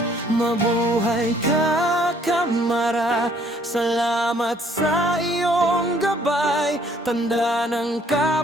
Mabuhay ka Kamara, salamat sa iyong gabay, tanda ng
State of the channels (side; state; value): both; normal; correlation 0.62